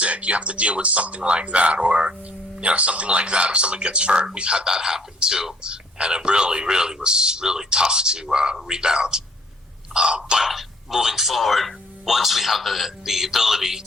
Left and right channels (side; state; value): both; normal; correlation 0.60